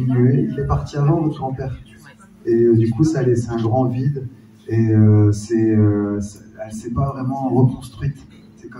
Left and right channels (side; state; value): both; identical; correlation 1.00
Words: Il est parti avant, votre grand-père. Et du coup, ça a laissé un grand vide, et elle ne s'est pas vraiment reconstruite. C'est